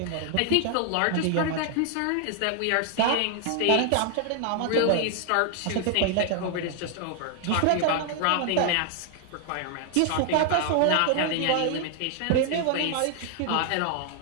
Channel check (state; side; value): different; both; correlation 0.00